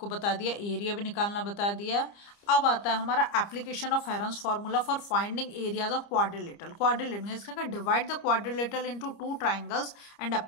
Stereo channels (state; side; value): late; right; 30 ms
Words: बता दिया, एरिया भी निकालना बता दिया। अब आता है हमारा application of Heron's formula for finding areas of quadrilateral. Quadrilateral इसका divide the quadrilateral into 2 triangles and